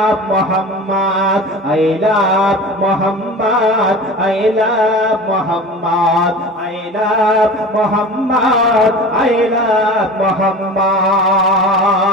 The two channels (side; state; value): both; normal; correlation 0.35